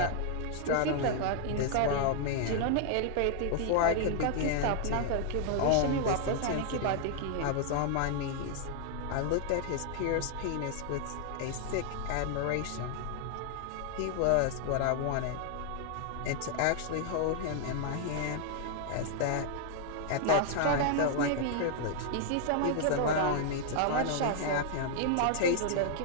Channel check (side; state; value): both; different; correlation 0.00